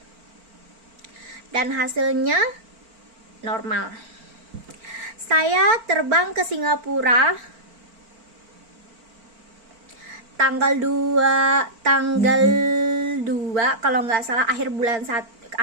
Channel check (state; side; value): late; left; 4.4 ms